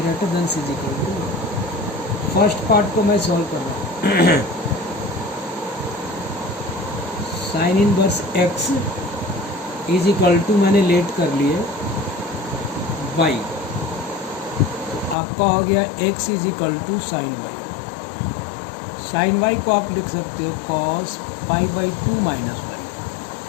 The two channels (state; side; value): drops out; right; at 15.2 s